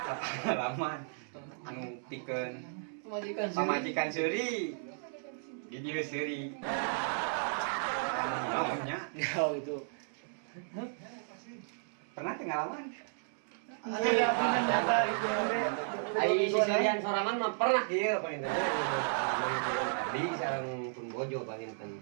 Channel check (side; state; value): left; silent; digital silence